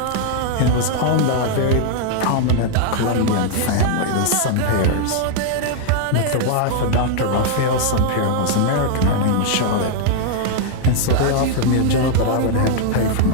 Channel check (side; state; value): both; different; correlation -0.01